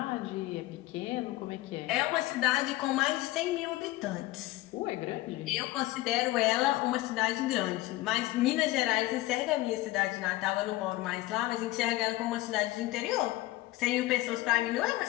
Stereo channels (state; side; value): quieter; right; 17.8 dB